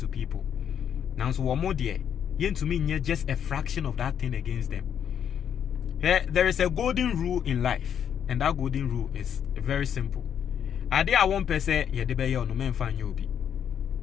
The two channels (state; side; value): quieter; right; 8.7 dB